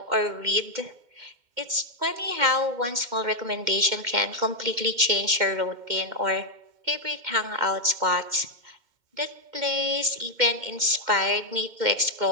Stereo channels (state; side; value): late; left; 2.1 ms